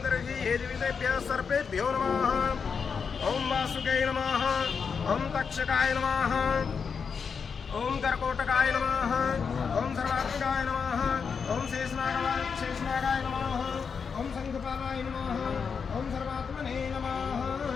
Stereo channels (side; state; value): right; quieter; 6.0 dB